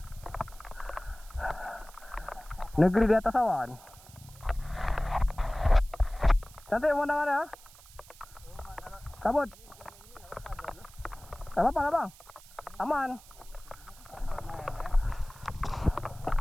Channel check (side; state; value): right; noise; hiss, 22 dB below the sound